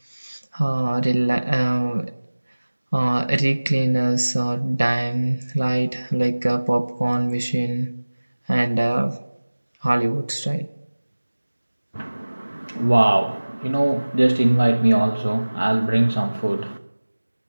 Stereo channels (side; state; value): both; inverted; correlation -1.00